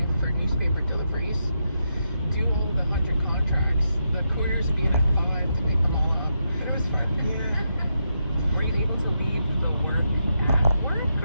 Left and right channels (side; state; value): both; inverted; correlation -0.83